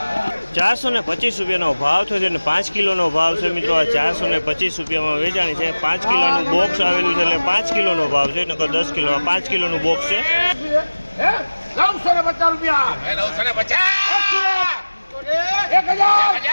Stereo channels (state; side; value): inverted; both; correlation -1.00